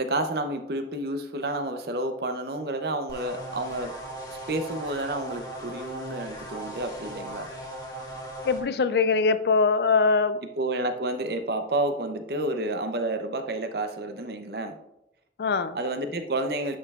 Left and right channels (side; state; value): both; normal; correlation -0.15